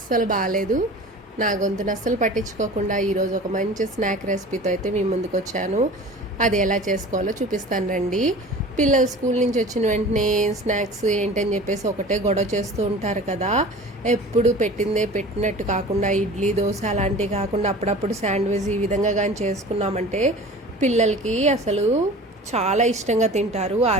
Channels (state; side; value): normal; both; correlation 0.40